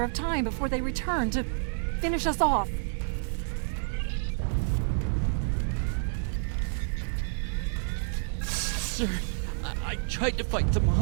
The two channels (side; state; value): left; silent; digital silence